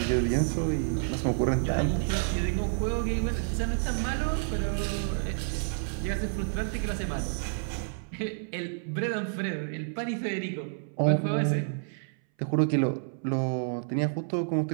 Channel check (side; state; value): left; silent; 58 dB below the other